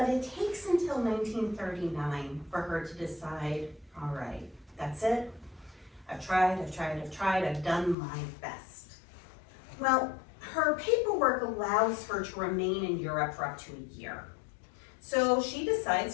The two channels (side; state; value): right; drops out; at 8.0 s